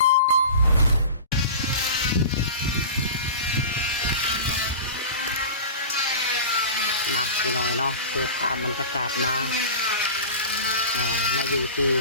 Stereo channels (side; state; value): both; inverted; correlation -0.33